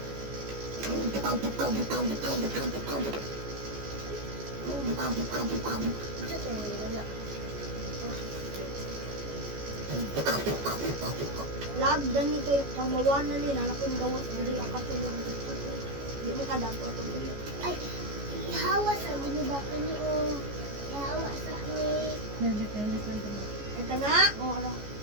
Lag, dani kayo pamawanan nila. Nakin gawas, hindi akatulong dito. Di mo kadato to. Ay, ihawas ako ni Baka ni o. Ihawas ako ni. Ito na. O, ano?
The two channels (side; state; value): left; late; 14 ms